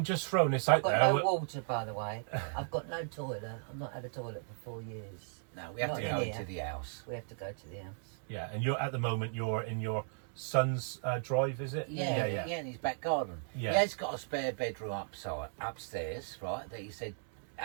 just throwing this out I've got there. no water, by the way. I've got no toilet. I've not had a toilet for 4 years. No, we have Not to in go here. to the house. We have to go to the house. Yeah, and at the moment you're in your son's drive, is it? Yeah, in his back garden. Yeah. He has got a spare bedroom upstairs, right, that he said,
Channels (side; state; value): left; silent; digital silence